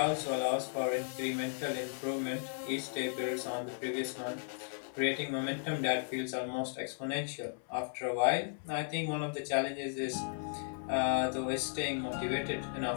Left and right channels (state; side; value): silent; right; 54 dB below the other